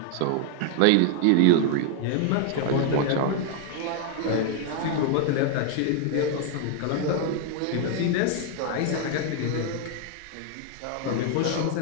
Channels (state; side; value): different; both; correlation 0.00